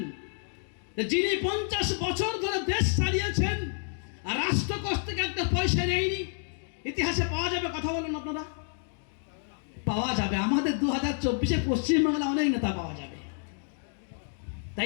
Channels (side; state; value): right; silent; 58 dB below the other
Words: যিনি 50 বছর ধরে দেশ চালিয়েছেন আর রাষ্ট্রকোষ থেকে একটা পয়সা নেয়নি? ইতিহাসে পাওয়া যাবে? কথা বলুন আপনারা। পাওয়া যাবে। আমাদের 2024-এ পশ্চিমবাংলা অনেক নেতা পাওয়া যাবে,